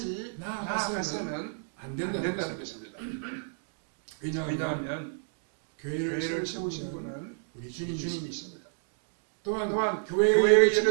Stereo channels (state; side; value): silent; left; digital silence